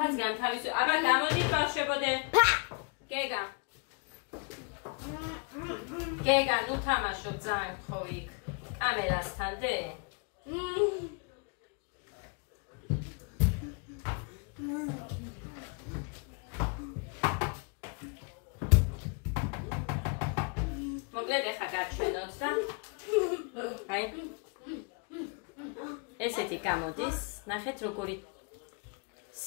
განთავისო. აბა გამოდით ბავშვებოდე. გეგა. გეგა, ნუ თამაშობ ძალიან გთხოვი იქ. კამერასთან დე. მოკლედ ეხა გაჩვენოთ და აი ესეთი გამოდის. ნახეთ როგორი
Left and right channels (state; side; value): quieter; right; 33.7 dB